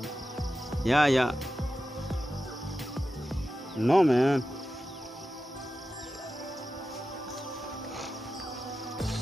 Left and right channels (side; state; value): both; normal; correlation 0.92